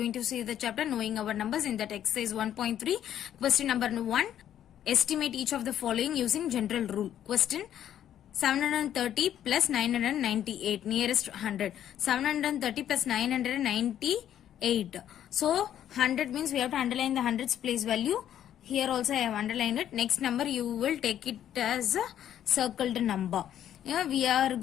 to see the chapter Knowing Our Numbers in that exercise 1.3. Question number 1. Estimate each of the following using general rule. Question 730 plus 998 nearest 100. 730 plus 998. So 100 means we have to underline the hundreds place value. Here also I have underlined it. Next number you will take it as a circled number. We are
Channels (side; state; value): right; quieter; 10.7 dB